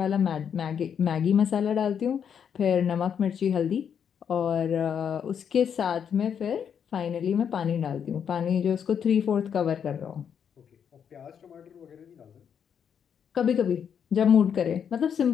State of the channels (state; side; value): quieter; right; 7.8 dB